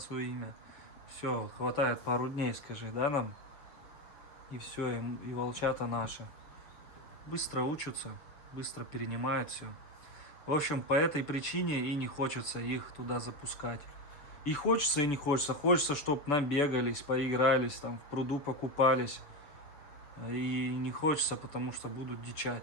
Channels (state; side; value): late; right; 6.8 ms